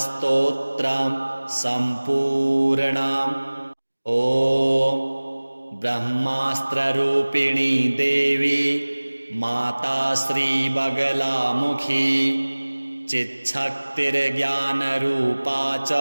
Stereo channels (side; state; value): both; inverted; correlation -1.00